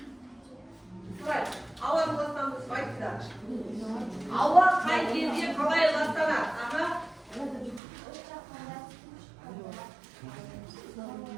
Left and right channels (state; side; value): drops out; left; at 7.8 s